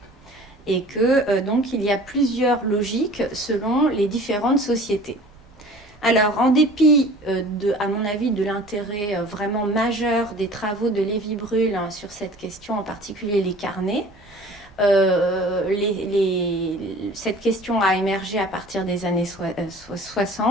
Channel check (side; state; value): both; normal; correlation 0.45